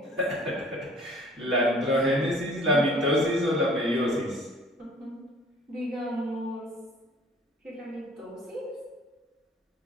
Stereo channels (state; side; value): normal; both; correlation 0.52